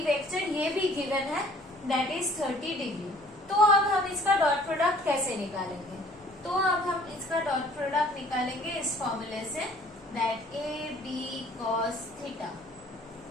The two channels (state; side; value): noise; left; rumble, 29 dB below the sound